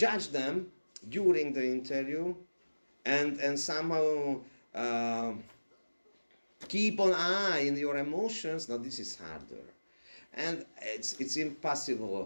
them during the interview, and somehow keep an eye in your emotions. Now this is harder, and it's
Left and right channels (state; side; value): inverted; both; correlation -1.00